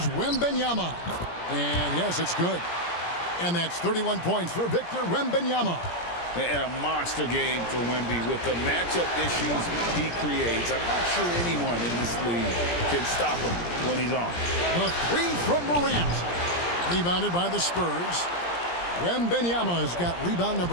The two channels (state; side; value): late; right; 17 ms